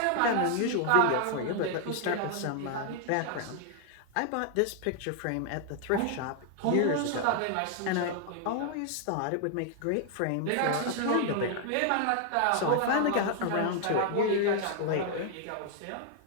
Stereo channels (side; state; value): both; different; correlation 0.00